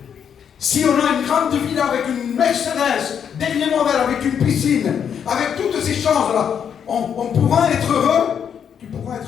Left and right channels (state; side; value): quieter; right; 8.0 dB